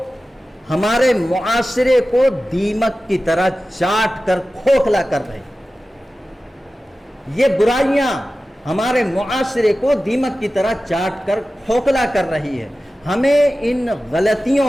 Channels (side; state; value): both; normal; correlation 0.95